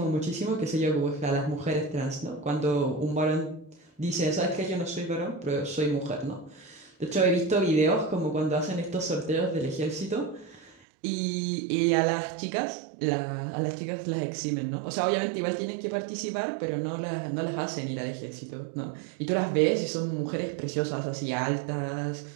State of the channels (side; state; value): left; drops out; at 10.8 s